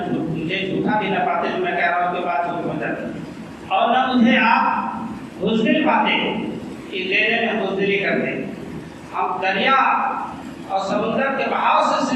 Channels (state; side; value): identical; both; correlation 1.00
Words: مجھے جھوٹا بھی نہ پاتے جو میں کہہ رہا ہوں کہ بات جھوٹ ہو جاتی، اور نہ مجھے آپ بزدل پاتے کہ دینے میں بزدلی کرتے. ہم دریا اور سمندر کے بہاؤ سے